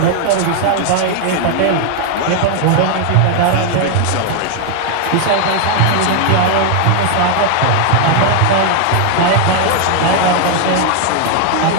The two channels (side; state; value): both; different; correlation 0.00